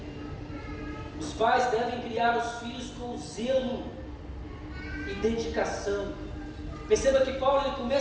pais devem criar os filhos com zelo e dedicação. Perceba que Paulo ele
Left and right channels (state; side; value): identical; both; correlation 1.00